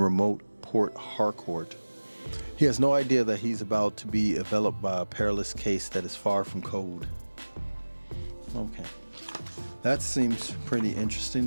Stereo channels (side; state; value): both; inverted; correlation -1.00